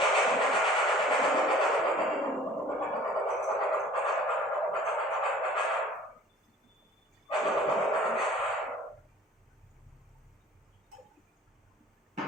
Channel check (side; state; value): both; normal; correlation 0.50